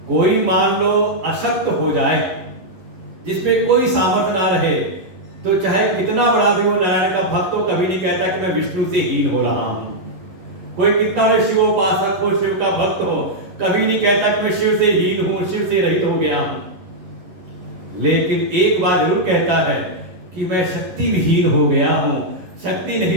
कोई मान लो अशक्त हो जाए, जिसमें कोई सामर्थ्य ना रहे, तो चाहे कितना बड़ा भी वो नारायण का भक्त हो, कभी नहीं कहता कि मैं विष्णु से हीन हो रहा हूं। कोई कितना बड़ा शिवोपासक हो, शिव का भक्त हो, कभी नहीं कहता कि मैं शिव से हीन हूं, शिव से रहित हो गया हूं। लेकिन एक बात जरूर कहता है कि मैं शक्ति विहीन हो गया हूं, शक्ति नहीं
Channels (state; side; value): late; left; 11 ms